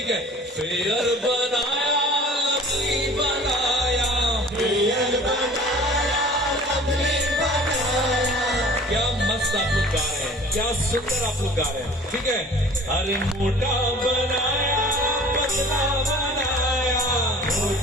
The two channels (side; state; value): both; normal; correlation 0.46